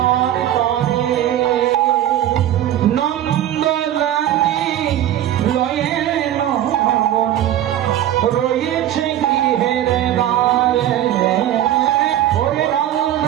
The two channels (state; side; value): quieter; left; 12.0 dB